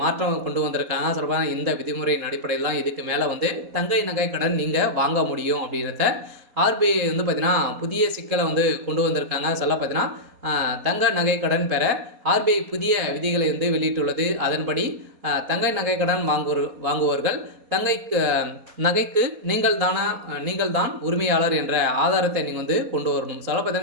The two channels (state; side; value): late; left; 4.2 ms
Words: மாற்றம் கொண்டு வந்திருக்காங்க. சொல்லப்போனா இந்த விதிமுறையின் அடிப்படையில் தான் இதுக்கு மேலே வந்து தங்க நகைக்கடன் நீங்கள் வாங்க முடியும் அப்படின்றத ஆர்பிஐ வந்து பார்த்தீங்கன்னா, புதிய சிக்கலை வந்து கொண்டு வந்திருக்காங்க. பார்த்தீங்கன்னா, தங்க நகைக்கடன் பெற ஆர்பிஐ புதிய விதிகளை வந்து வெளியிட்டுள்ளது. அதன்படி தங்க நகைக்கடன் வாங்குவோர்கள் நகைக்கு நீங்கள் தான் உரிமையாளர் என்ற ஆதாரத்தை நீங்கள் வந்து கொண்டு வரணும்.